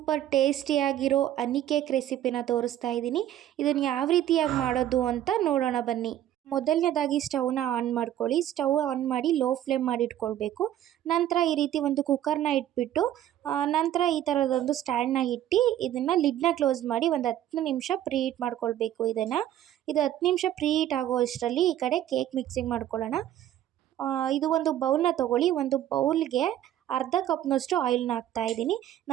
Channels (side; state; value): left; quieter; 12.0 dB